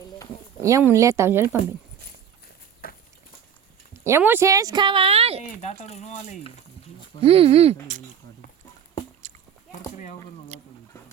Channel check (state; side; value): quieter; left; 8.2 dB